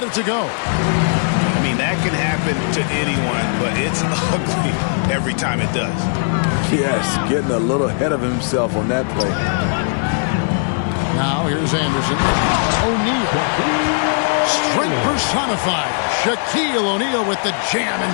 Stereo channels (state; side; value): silent; right; digital silence